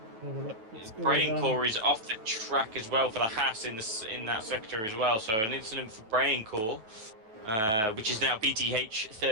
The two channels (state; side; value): late; left; 9.3 ms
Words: Brain core is off the track as well for the Haas in that sector as well. So an incident for Brain core, which is now BTH